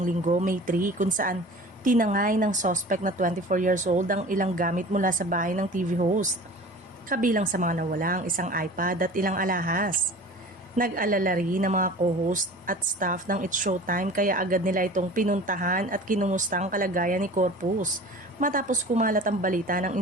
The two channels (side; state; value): both; normal; correlation 0.41